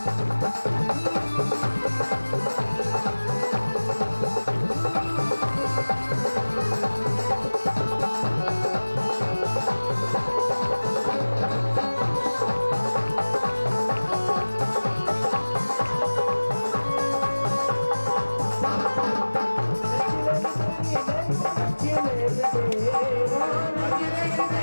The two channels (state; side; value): inverted; both; correlation -1.00